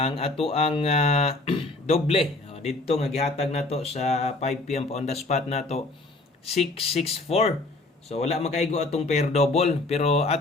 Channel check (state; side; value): quieter; right; 3.0 dB